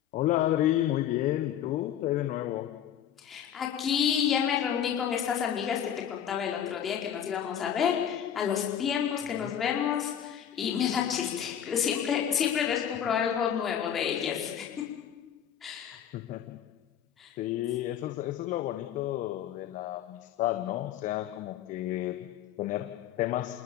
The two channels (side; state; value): right; quieter; 9.6 dB